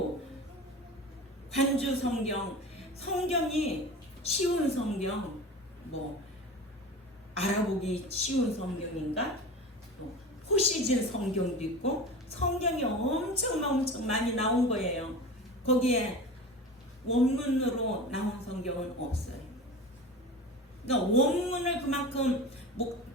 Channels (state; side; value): normal; both; correlation 0.32